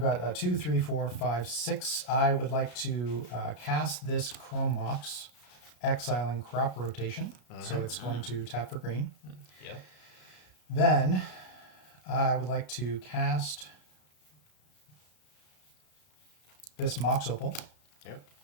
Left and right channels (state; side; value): late; right; 33 ms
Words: 2, 3, 4, 5, 6. I would like to cast this Chrome Mox, exiling Crop Rotation. So it's going to tap for green. Yep. Then I would like to cast this Mox Opal. Yep.